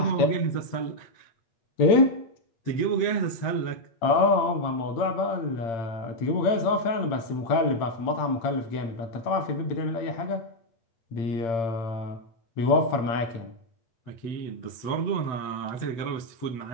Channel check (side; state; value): right; late; 8.8 ms